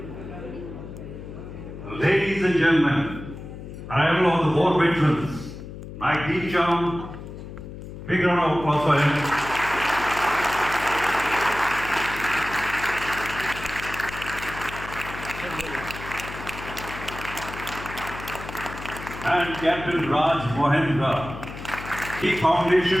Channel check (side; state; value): left; noise; hum, 11 dB below the sound